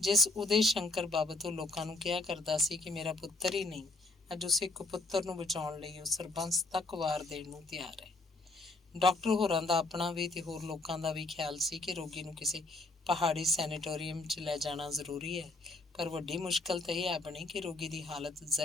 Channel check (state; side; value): quieter; right; 3.1 dB